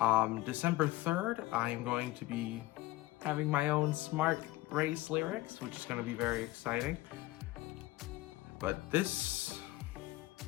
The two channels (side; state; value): right; quieter; 18.1 dB